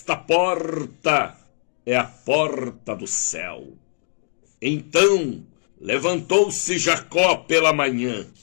porta é a porta do céu. Então levantou-se Jacó pela manhã,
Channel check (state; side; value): silent; right; digital silence